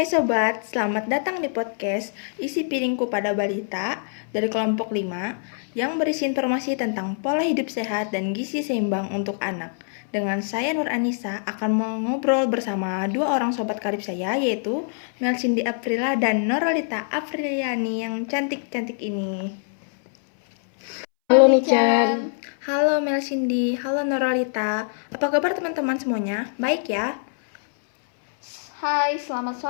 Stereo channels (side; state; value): right; silent; 63 dB below the other